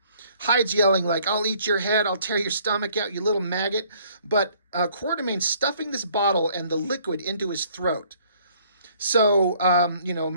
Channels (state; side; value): inverted; both; correlation -0.61